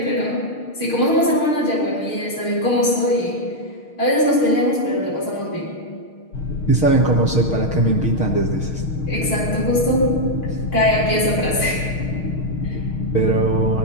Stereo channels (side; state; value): right; late; 6.4 ms